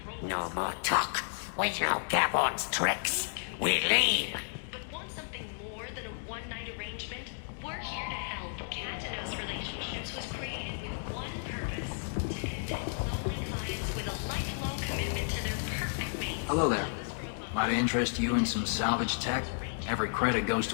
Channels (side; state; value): right; silent; digital silence